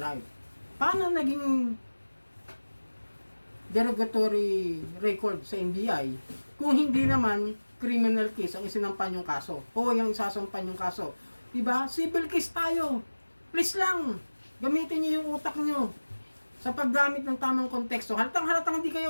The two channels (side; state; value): both; inverted; correlation -1.00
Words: Paano naging derogatory record sa NBI kung hindi naman criminal case ang isinampan yung kaso o yung isasampan yung kaso? Diba? Civil case tayo. Please lang, gamitin niyo yung utak niyo sa paggamit ng tamang konteksto. Halatang hindi kayo